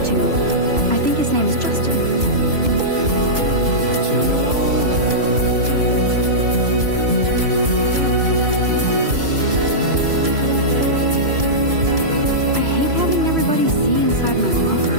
to, I think his name is Justin. I hate having everybody see inside my locker.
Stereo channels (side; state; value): left; late; 3.0 ms